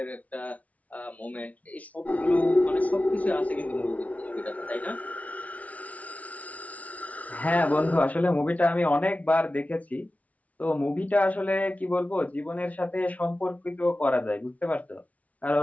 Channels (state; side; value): late; right; 0.069 ms